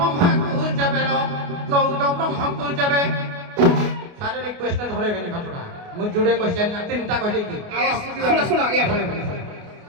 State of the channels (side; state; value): left; late; 29 ms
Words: ଯାବେ 14 ବ୍ରହ୍ମକୁ ଯାବେ सारे रिक्वेस्ट धरेबेनी घटना मु जुड़े क्वेश्चन ना तीनटा कह देकी ଶୁଣ ଶୁଣ